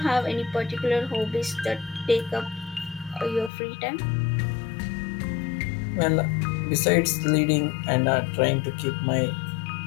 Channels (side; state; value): right; drops out; at 3.5 s